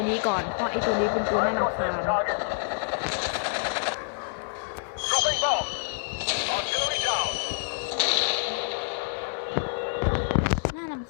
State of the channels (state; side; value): silent; right; 60 dB below the other